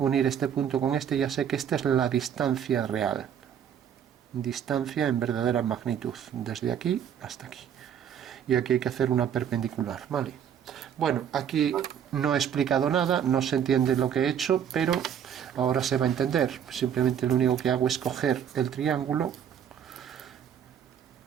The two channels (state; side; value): quieter; left; 8.7 dB